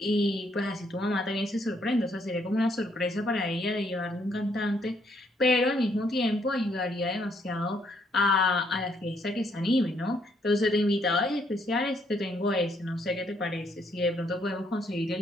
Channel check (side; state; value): both; normal; correlation 0.70